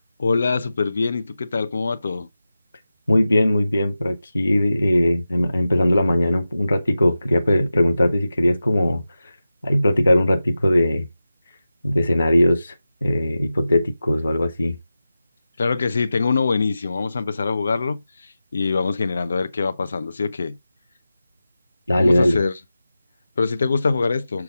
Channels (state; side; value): inverted; both; correlation -0.93